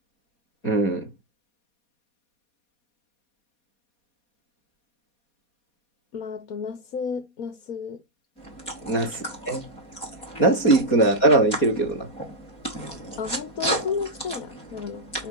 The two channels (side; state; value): right; late; 4.2 ms